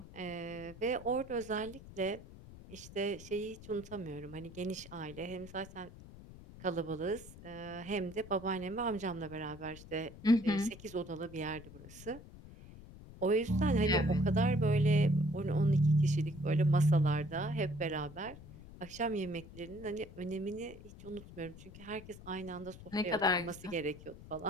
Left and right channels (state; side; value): noise; left; rumble, 17 dB below the sound